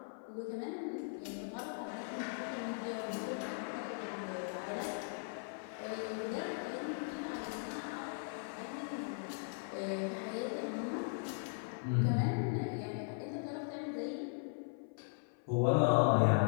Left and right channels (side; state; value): right; silent; 52 dB below the other